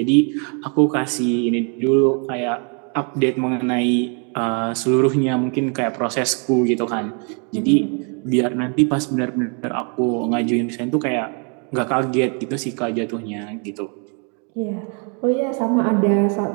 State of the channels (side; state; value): left; quieter; 38.1 dB